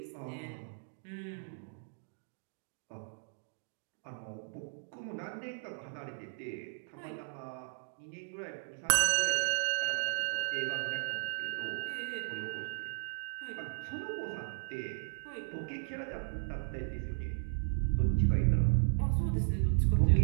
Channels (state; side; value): silent; left; digital silence